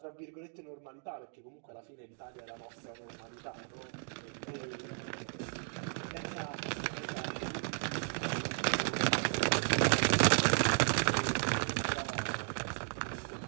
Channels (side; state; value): left; silent; 54 dB below the other